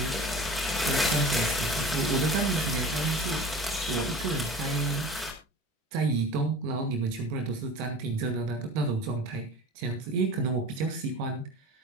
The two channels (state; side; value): normal; both; correlation 0.38